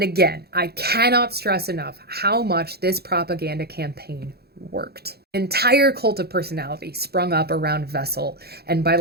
again, I cannot stress enough how much this propaganda campaign worked. An entire cult of personality sprung up around Wessel, and by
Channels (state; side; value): late; left; 0.46 ms